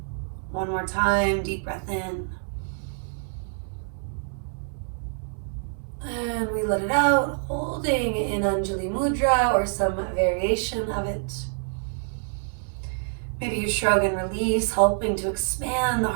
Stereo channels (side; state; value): left; silent; 61 dB below the other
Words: One more time, deep breath in. And we let it out, holding in Anjali Mudra or some variation of it. Maybe you shrug and release, helping to expand the